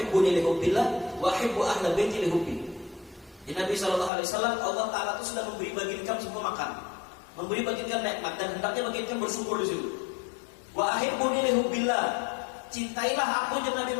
li hubbillah wa ahibbu ahla baiti li hubbi. Di Nabi SAW, Allah Ta'ala itu sudah memberi bagi kamu semua makan, memberi bagi kamu nikmat, dan hendaknya bagi kamu bersyukur di situ. Wa ahibbuni li hubbillah, cintailah aku dan Nabi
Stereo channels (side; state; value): right; drops out; at 4.1 s